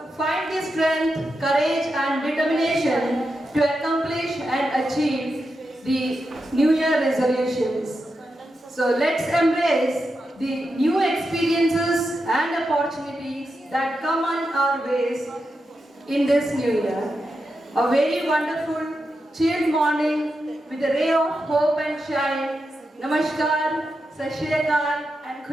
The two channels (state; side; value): normal; both; correlation 0.88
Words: the strength, courage and determination to accomplish and achieve the New Year resolutions. So let's embrace the new experiences and opportunities that come on our ways in this new year. A very wonderful, chilled morning with a ray of hope and shine. Namaskar, Sat Shri Akal and